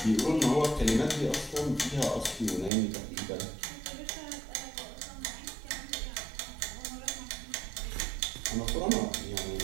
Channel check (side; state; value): left; drops out; at 2.7 s